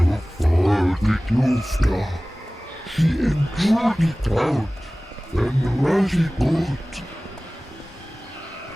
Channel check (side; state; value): both; normal; correlation 0.98